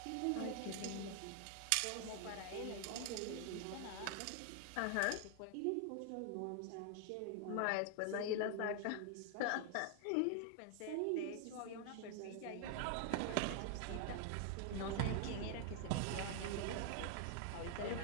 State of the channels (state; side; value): different; both; correlation 0.00